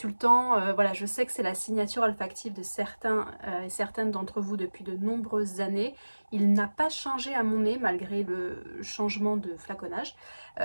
voilà, je sais que c'est la signature olfactive de certains et certaines d'entre vous depuis de nombreuses années. Il n'a pas changé à mon nez malgré le changement de flaconnage.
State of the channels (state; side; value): inverted; both; correlation -1.00